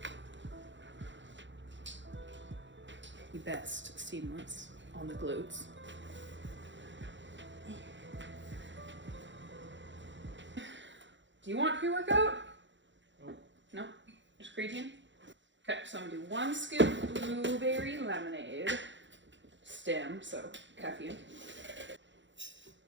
The best seamless on the glutes. Do you want pre-workout? No? Just creatine? Okay, so I'm gonna do 1 scoop blueberry lemonade. Stem, so caffeine.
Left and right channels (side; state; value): left; late; 0.54 ms